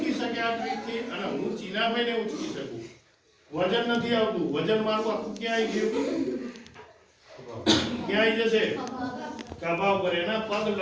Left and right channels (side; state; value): both; identical; correlation 1.00